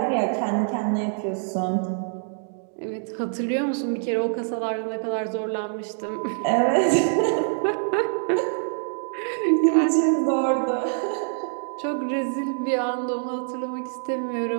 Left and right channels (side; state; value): left; silent; digital silence